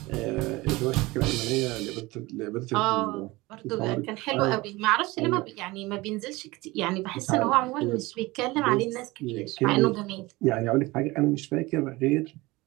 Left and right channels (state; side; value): quieter; left; 21.3 dB